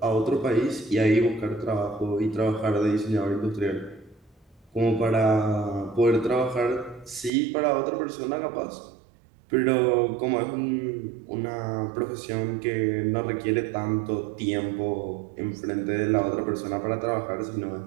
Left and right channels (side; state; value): left; drops out; at 7.3 s